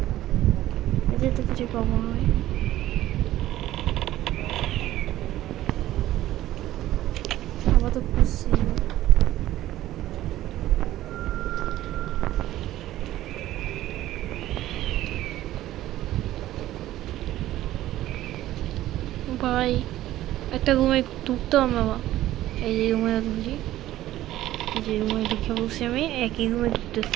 এদের তো কিছু পাবো হয়। আবার তো খুশি ভাই, একটা রুমে ঢুকতে হবে বাবা। এই যে রুমে ঢুকছি, এই যে রুমে ঢুকে বসে আমি একই রুমে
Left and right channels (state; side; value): quieter; left; 14.4 dB